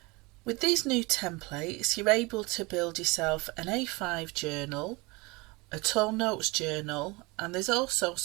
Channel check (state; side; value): quieter; left; 25.2 dB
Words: With these new templates you're able to build yourself an A5 journal, a tall notes journal, and there's also